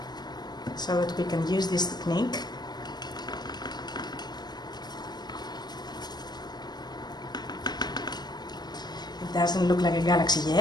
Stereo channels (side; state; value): right; late; 0.20 ms